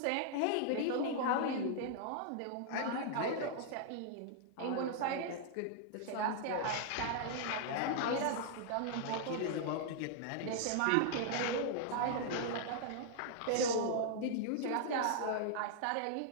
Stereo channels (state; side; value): different; both; correlation -0.01